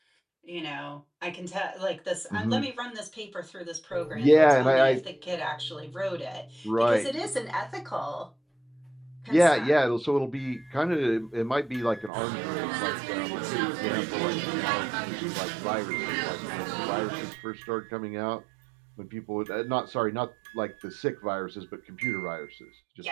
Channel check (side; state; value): left; drops out; at 12.1 s